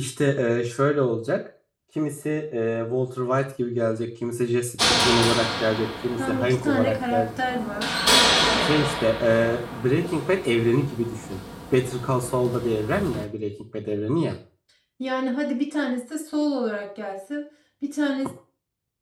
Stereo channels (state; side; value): identical; both; correlation 1.00